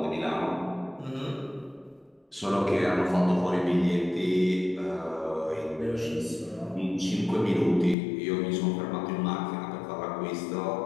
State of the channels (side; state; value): right; drops out; at 8.0 s